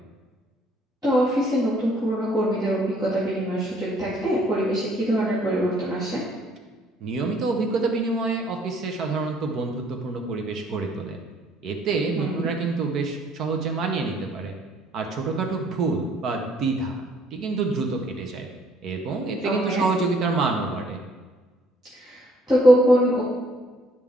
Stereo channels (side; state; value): both; normal; correlation 0.62